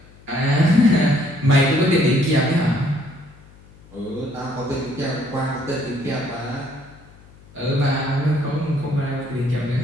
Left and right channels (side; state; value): left; noise; hum, 24 dB below the sound